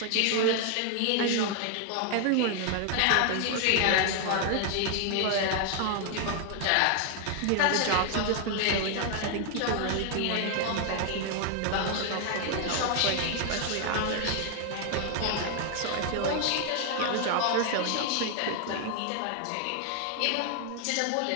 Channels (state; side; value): different; both; correlation 0.00